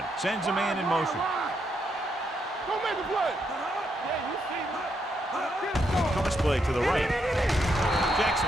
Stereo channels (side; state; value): both; normal; correlation 0.78